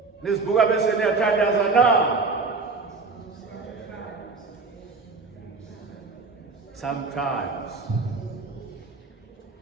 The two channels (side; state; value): left; quieter; 4.2 dB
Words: Nizibuka bese niyathandaza na? Sometimes.